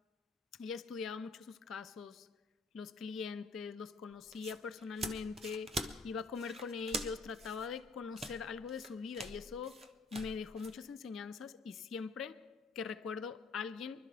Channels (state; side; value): quieter; right; 3.6 dB